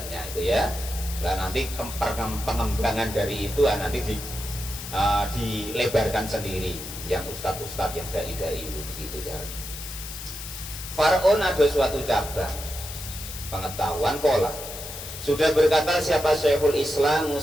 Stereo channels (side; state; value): left; noise; hiss, 10 dB below the sound